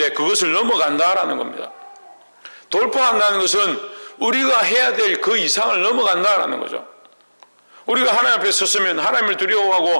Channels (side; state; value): both; inverted; correlation -1.00